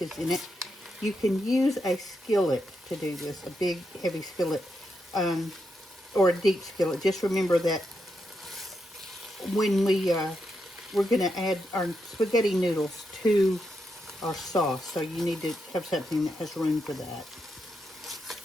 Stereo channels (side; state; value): both; normal; correlation 0.83